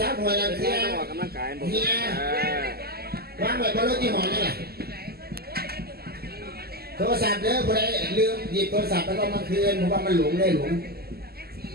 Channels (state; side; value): late; left; 0.46 ms